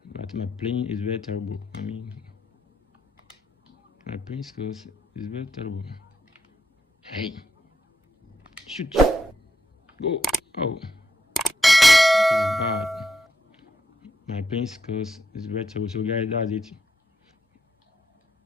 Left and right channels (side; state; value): both; normal; correlation 0.80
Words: But my playing is very terrible. My playing skills is very terrible. Hey, shoot, go. Oh, this is bad. My playing skills is very terrible. So guys, that's it.